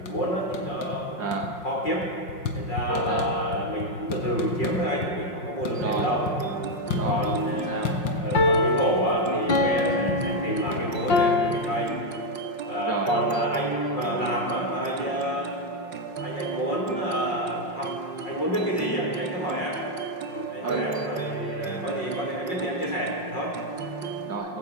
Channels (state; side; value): late; right; 5.6 ms